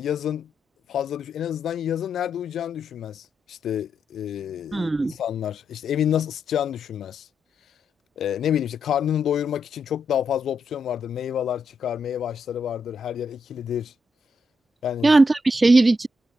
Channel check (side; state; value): both; normal; correlation 0.82